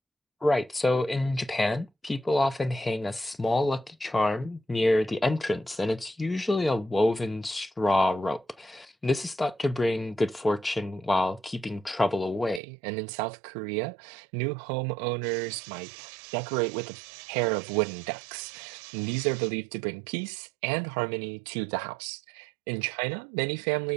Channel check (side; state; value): left; drops out; at 12.6 s